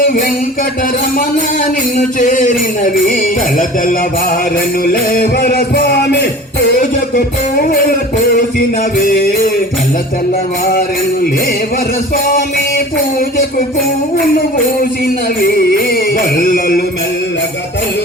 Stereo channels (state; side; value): normal; both; correlation 0.40